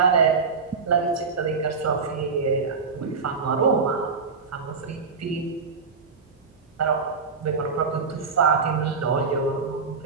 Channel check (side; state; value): left; quieter; 4.9 dB